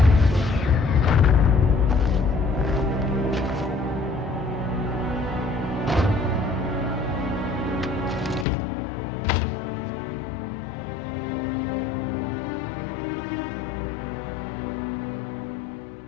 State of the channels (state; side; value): drops out; right; at 8.5 s